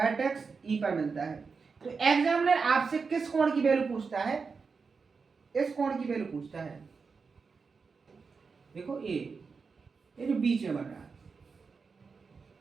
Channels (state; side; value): quieter; left; 5.0 dB